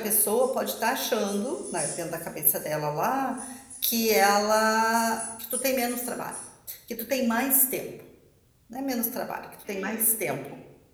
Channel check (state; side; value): identical; both; correlation 1.00